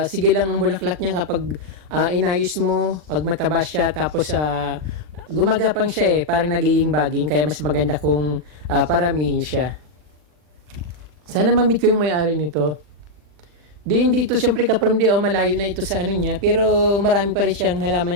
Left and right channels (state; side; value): late; left; 40 ms